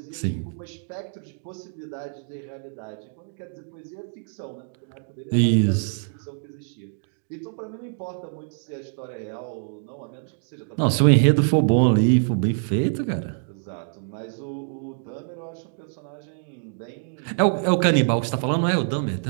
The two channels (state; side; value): silent; left; digital silence